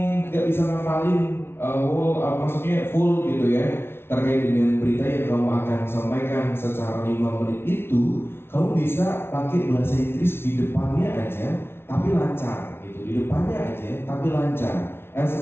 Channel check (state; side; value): late; right; 0.12 ms